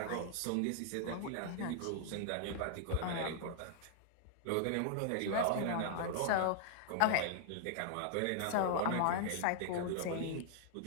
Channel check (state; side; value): different; both; correlation 0.00